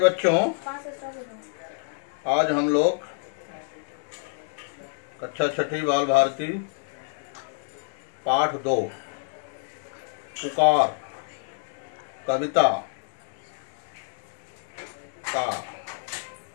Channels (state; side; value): silent; right; digital silence